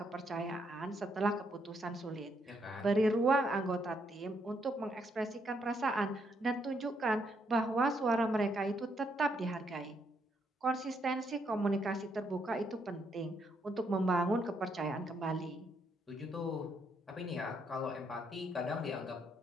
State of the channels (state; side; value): normal; both; correlation 0.74